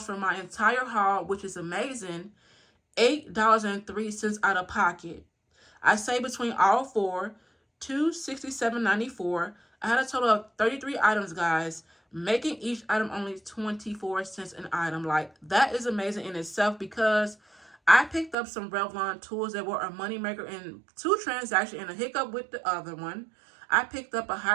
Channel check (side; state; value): left; drops out; at 18.4 s